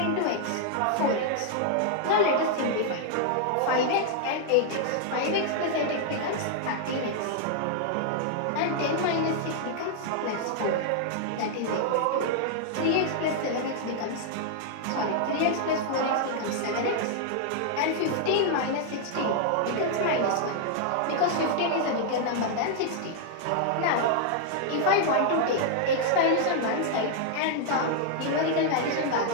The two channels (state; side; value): different; both; correlation -0.01